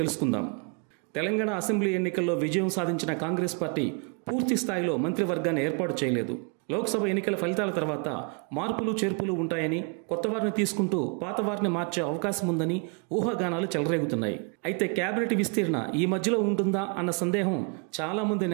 తెలుసుకుందాం. తెలంగాణ అసెంబ్లీ ఎన్నికల్లో విజయం సాధించిన కాంగ్రెస్ పార్టీ పూర్తి స్థాయిలో మంత్రివర్గాన్ని ఏర్పాటు చేయలేదు. లోక్సభ ఎన్నికల ఫలితాల తర్వాత మార్పులు చేర్పులు ఉంటాయని, కొత్త వారిని తీసుకుంటూ పాత వారిని మార్చే అవకాశం ఉందని ఊహాగానాలు చెలరేగుతున్నాయి. అయితే కేబినెట్ విస్తీర్ణ ఈ మధ్యలో ఉంటుందా అన్న సందేహం చాలామంది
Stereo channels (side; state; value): left; quieter; 36.4 dB